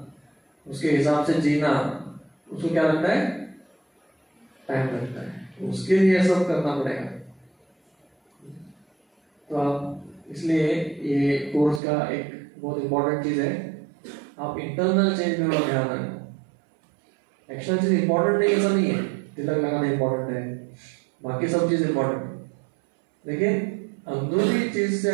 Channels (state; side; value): drops out; left; at 11.8 s